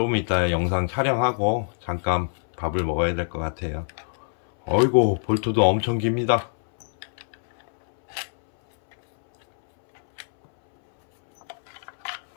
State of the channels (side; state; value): right; silent; 63 dB below the other